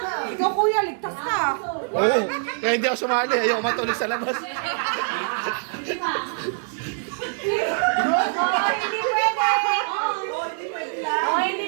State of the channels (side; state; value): left; silent; 62 dB below the other